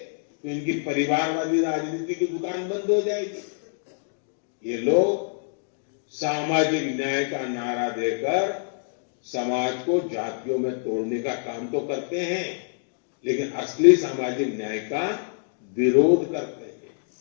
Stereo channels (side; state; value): right; silent; digital silence